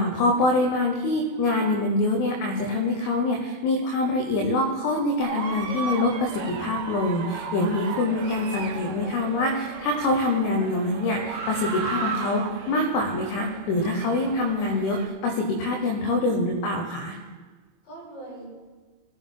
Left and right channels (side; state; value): right; late; 24 ms